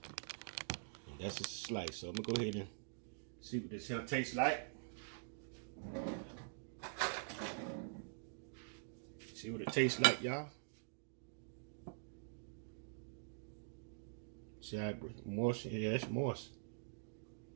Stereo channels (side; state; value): left; silent; digital silence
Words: And that's a slice. So I'm gonna go ahead and see what this here tastes like. See what it tastes like, y'all. See how moist? Yeah, it's moist.